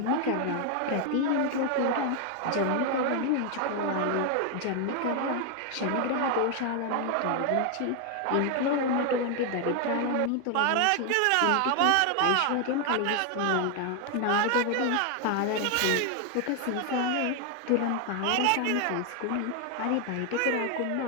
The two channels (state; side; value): different; both; correlation 0.01